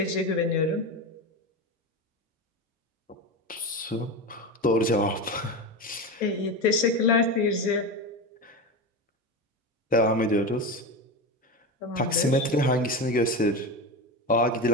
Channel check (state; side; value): normal; both; correlation 0.21